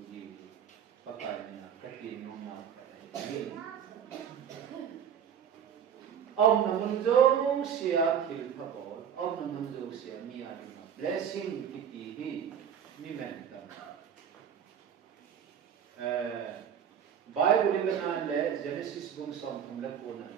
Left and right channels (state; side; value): quieter; left; 8.4 dB